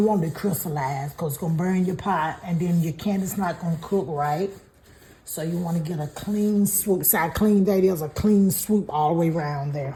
it to crystallize, because it's gonna burn your pot, and then your candy's not gonna cook right. So you want to get a clean swoop. See how clean that is? A clean swoop all the way around there.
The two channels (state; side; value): identical; both; correlation 1.00